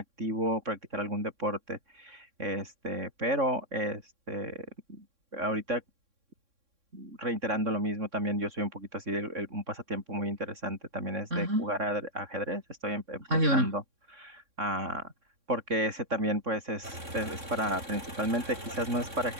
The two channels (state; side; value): late; left; 3.6 ms